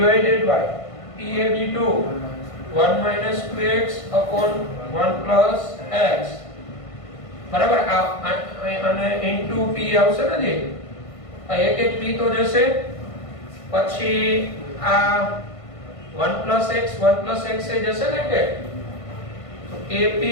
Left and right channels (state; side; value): late; right; 1.5 ms